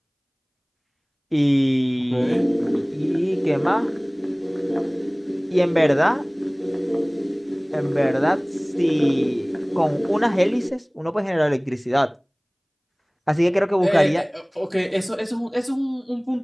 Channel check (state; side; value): identical; both; correlation 1.00